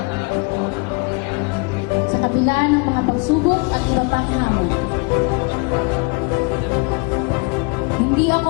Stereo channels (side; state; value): right; quieter; 30.4 dB